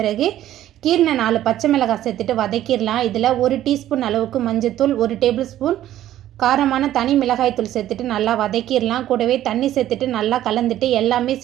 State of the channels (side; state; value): left; quieter; 12.8 dB